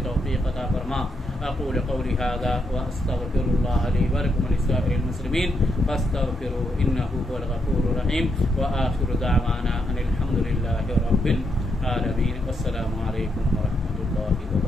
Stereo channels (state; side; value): normal; both; correlation 0.80